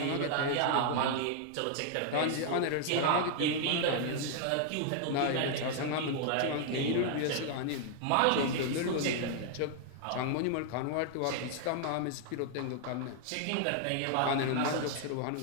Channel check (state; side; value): different; both; correlation 0.00